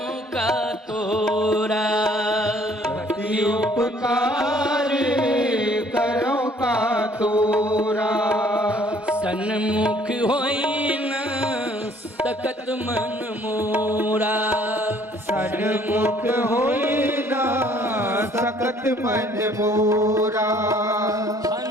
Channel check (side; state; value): both; normal; correlation 0.59